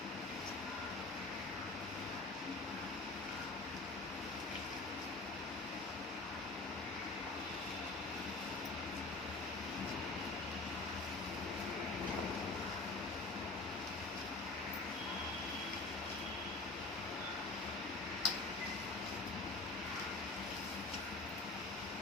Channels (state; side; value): quieter; right; 3.3 dB